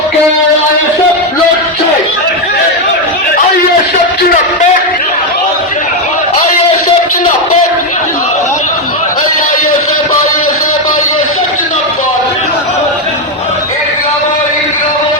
আইএসএফ লড়ছে, আইএসএফ জিন্দাবাদ, আইএসএফ জিন্দাবাদ, আইএসএফ আইএসএফ আইএসএফ জিন্দাবাদ, ইনকলাব ইনকলাব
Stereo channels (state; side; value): normal; both; correlation 0.06